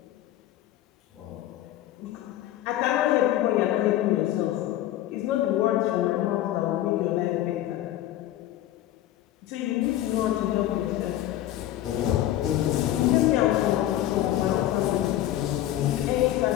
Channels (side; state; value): right; quieter; 13.4 dB